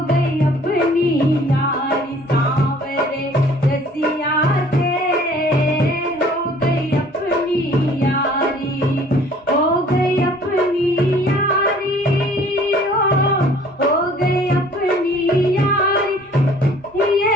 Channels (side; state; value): both; normal; correlation 0.53